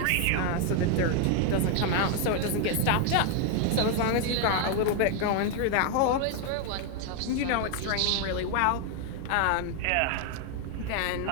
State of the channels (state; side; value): different; both; correlation 0.01